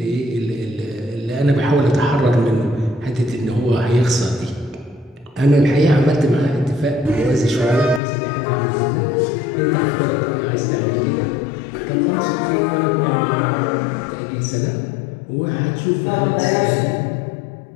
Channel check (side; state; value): right; drops out; at 8.0 s